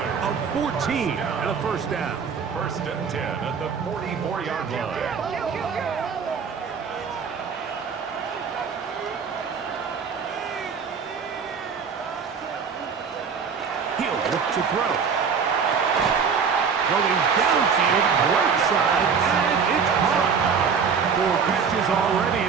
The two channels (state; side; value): quieter; left; 6.2 dB